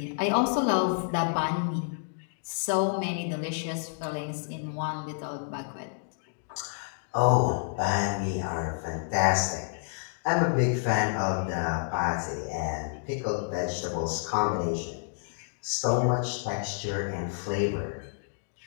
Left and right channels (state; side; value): silent; right; digital silence